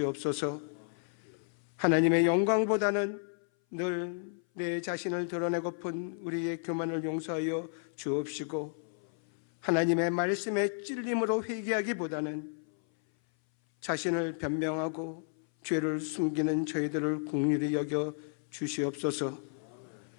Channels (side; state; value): right; silent; 56 dB below the other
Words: 하나님의 영광보다는 늘 내 자신을 드러내고픈 우리의 교만을 용서하여 주옵시고 하나님의 말씀에 찔림으로 회개하기보다는 자신을 변명하고 죄를 숨기는 저희들을 긍휼히 여겨 주시옵소서.